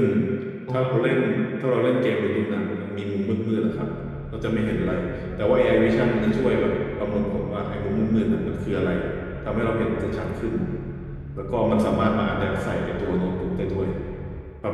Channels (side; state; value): both; identical; correlation 1.00